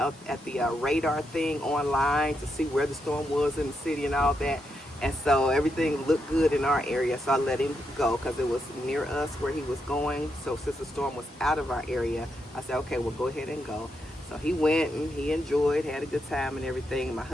at the radar thing online to see where the storm was in the city and all that. And so everything looked good in our area. So I let him go because it was near us where he was going. So since the storm was out of our area, I said, okay, well, go ahead and go. So he went and he enjoyed, had a good time and everything. My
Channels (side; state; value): both; normal; correlation 0.82